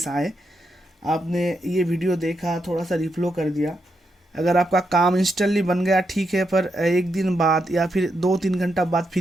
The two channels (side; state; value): both; normal; correlation 0.83